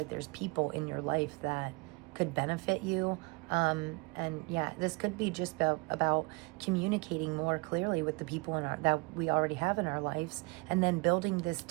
there's people in your life that could benefit you. And yeah, this could be just about communicating more clearly with the people that we already have in our lives, and then building this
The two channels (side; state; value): left; quieter; 28.7 dB